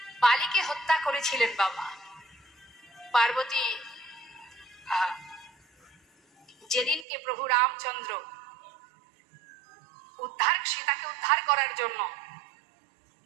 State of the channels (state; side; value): drops out; left; at 7.1 s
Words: বালিকে হত্যা করেছিলেন বাবা পার্বতী, যেদিনকে প্রভু রামচন্দ্র সীতাকে উদ্ধার করার জন্য